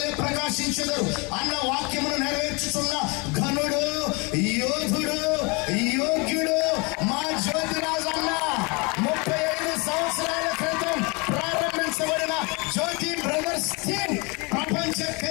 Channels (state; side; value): quieter; right; 29.5 dB